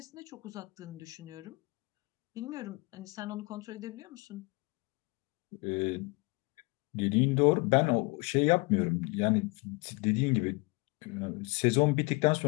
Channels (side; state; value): right; quieter; 26.5 dB